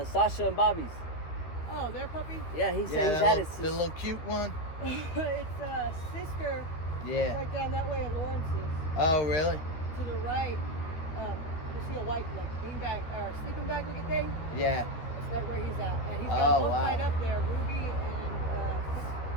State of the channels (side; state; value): right; late; 13 ms